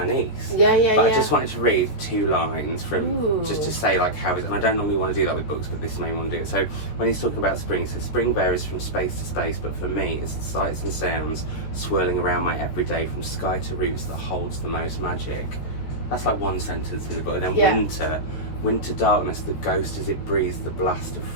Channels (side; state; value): right; late; 14 ms